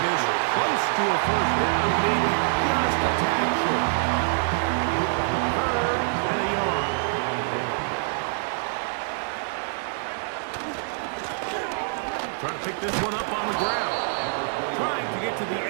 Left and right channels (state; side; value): silent; left; digital silence